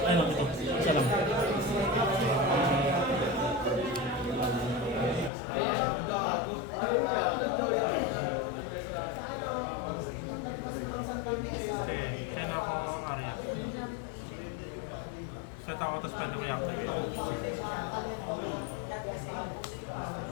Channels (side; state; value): right; drops out; at 5.3 s